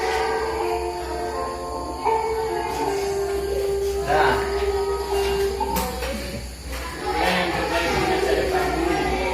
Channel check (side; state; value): both; identical; correlation 1.00